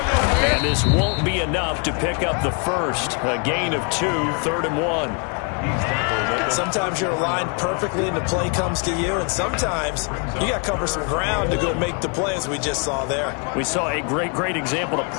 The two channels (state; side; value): quieter; right; 36.3 dB